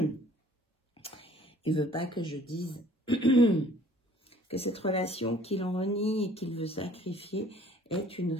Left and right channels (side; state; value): both; normal; correlation 0.55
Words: ne veut pas que je dise que cette relation qu'il renie et qu'il veut sacrifier est une